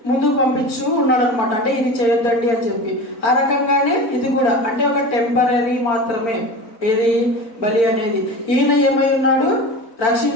ముందుకు పంపించు ఉన్నాడు అనమాట. అంటే ఇది చేయొద్దండి అని చెప్పి. ఆ రకంగానే ఇది కూడా అంటే ఒక టెంపరీ మాత్రమే ఏది బలి అనేది. ఈయన ఏమై ఉన్నాడు?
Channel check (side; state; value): right; late; 4.0 ms